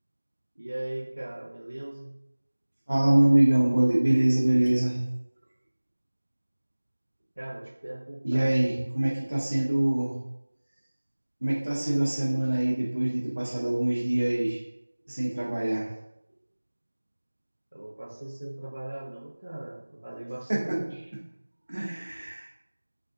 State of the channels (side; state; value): both; inverted; correlation -1.00